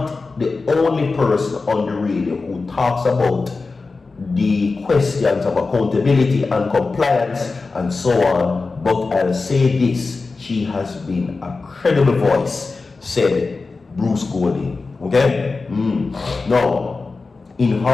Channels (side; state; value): right; quieter; 4.0 dB